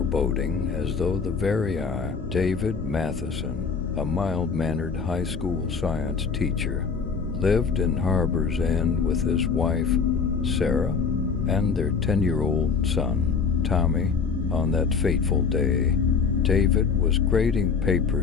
as though the very eye. David Matheson, a mild-mannered high school science teacher, lived in Harbor's End with his wife, Sarah, and their 10-year-old son, Tommy. On that fateful day, David was grading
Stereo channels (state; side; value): quieter; right; 5.6 dB